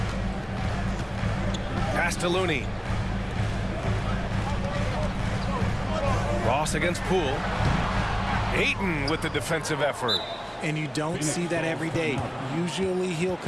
Pass to Looney. Ross against Poole. Ayton with the defensive effort. And you don't see that every day. Usually he'll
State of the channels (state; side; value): identical; both; correlation 1.00